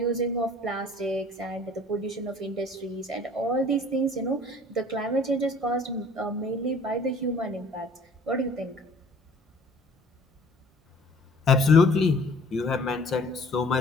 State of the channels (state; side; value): normal; both; correlation 0.52